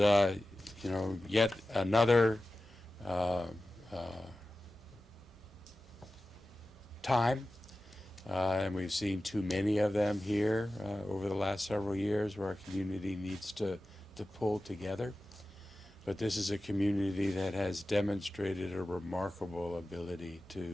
yet another time, and we've seen too many of them here over the last several years, where our community needs to pull together. But this is a community that has demonstrated a remarkable ability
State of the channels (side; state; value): both; normal; correlation 0.95